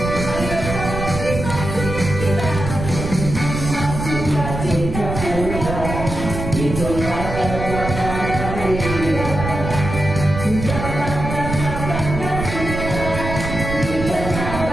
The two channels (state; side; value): noise; right; rumble, 5 dB below the sound